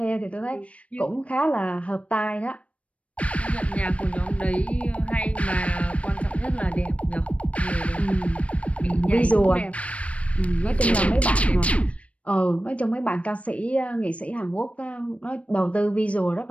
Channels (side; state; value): right; late; 0.064 ms